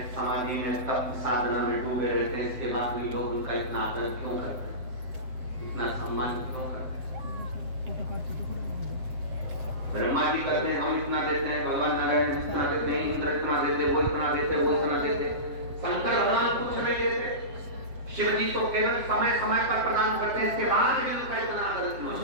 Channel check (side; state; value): left; late; 7.8 ms